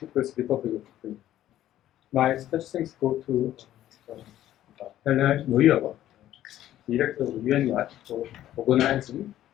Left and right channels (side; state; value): right; quieter; 12.8 dB